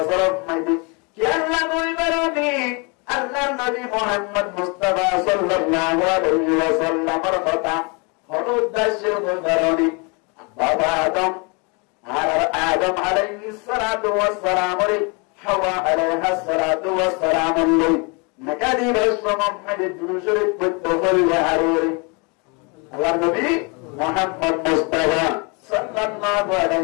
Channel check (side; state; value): right; quieter; 32.1 dB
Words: মাঝে কি আল্লাহ বলবেন আল্লাহর নবী মুহাম্মদ মুস্তাফা সাল্লাল্লাহু আলাইহি ওয়াসাল্লামের কথা হল উদ্দেশ্য বলবারনি বাবা আদম আলাইহিস সালাতু ওয়াস সালাম রে হাওয়া আলাইহিস সালাতু ওয়াস সালাম নকাদি রাসূলুল্লাহ দুরুশরীফ পড়তে হইলে হারুরি আল্লাহর নবী মুহাম্মদ মুস্তাফা সাল্লাল্লাহু